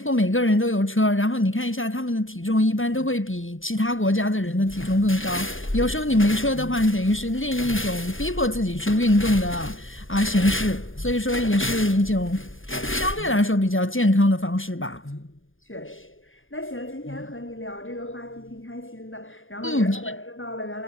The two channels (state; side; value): late; right; 0.59 ms